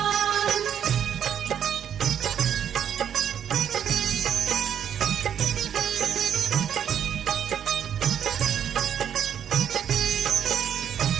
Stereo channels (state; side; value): quieter; left; 9.0 dB